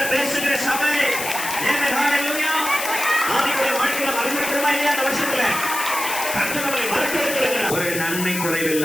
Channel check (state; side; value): noise; left; hiss, 5 dB below the sound